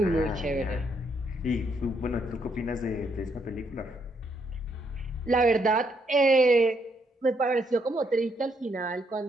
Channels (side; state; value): both; normal; correlation 0.74